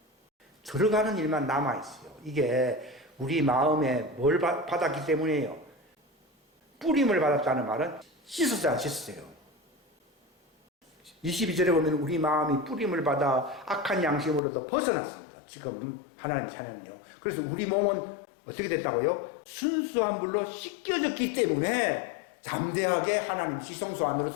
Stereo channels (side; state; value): right; drops out; at 14.4 s